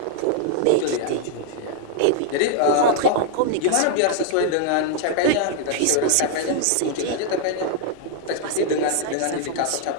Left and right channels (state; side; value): different; both; correlation 0.00